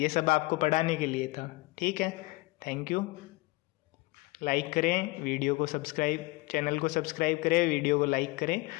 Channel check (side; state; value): right; quieter; 22.7 dB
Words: सब आपको पढ़ाने के लिए था, ठीक है। Thank you. लाइक करें वीडियो को, सब्सक्राइब, चैनल को सब्सक्राइब करें, वीडियो को लाइक करें